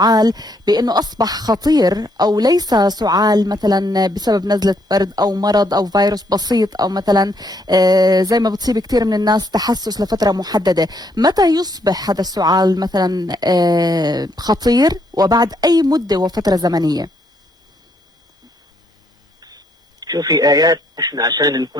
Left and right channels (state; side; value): normal; both; correlation 0.72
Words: بأنه أصبح خطير، أو ليس سعال مثلا بسبب نزلة برد أو مرض أو فيروس بسيط، أو مثلا زي ما بتصيب كثير من الناس تحسس لفترة محددة. متى يصبح هذا السعال مثلا خطير، وبعد أي مدة وفترة زمنية؟ شوفي آيات، احنا عشان